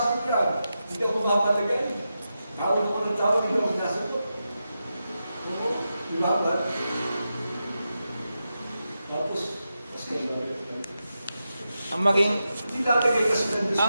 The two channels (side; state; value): both; inverted; correlation -0.89